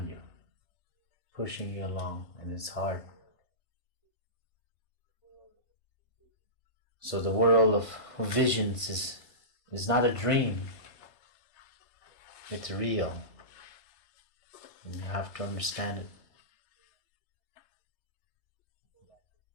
you, pushing you along, and it's hard. So the world of visions is not a dream. It's real. And you have to understand it.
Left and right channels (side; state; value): right; late; 3.3 ms